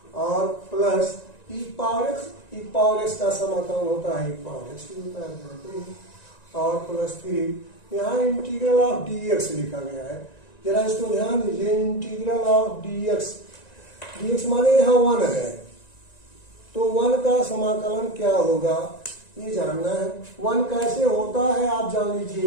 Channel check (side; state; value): right; late; 1.9 ms